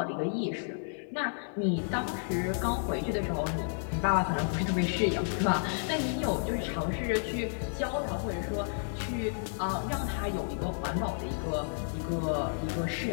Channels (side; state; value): right; silent; digital silence